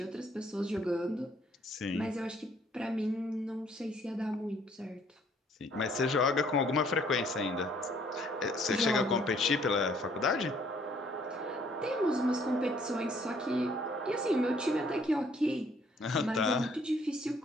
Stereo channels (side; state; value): both; normal; correlation 0.63